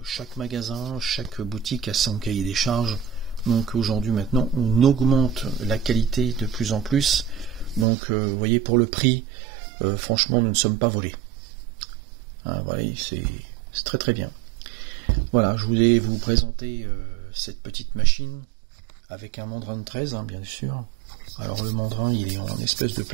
Chaque magasin, chaque boutique a son cahier des charges. Donc aujourd'hui maintenant on augmente la qualité de plus en plus. Donc vous voyez, pour le prix, franchement nous ne sommes pas volés. Hein, voilà, c'est très très bien. Voilà, je voulais vous présenter cette petite machine avec un mandrin de 13, hein, bien sûr. Alors le mandrin il est en espèce de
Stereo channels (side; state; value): left; drops out; at 7.9 s